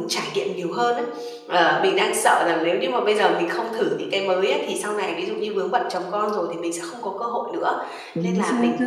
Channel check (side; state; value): both; identical; correlation 1.00